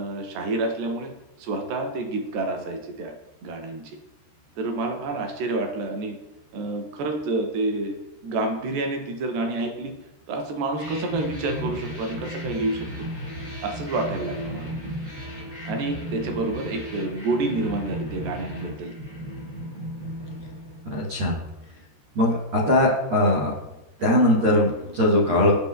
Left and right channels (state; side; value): late; left; 13 ms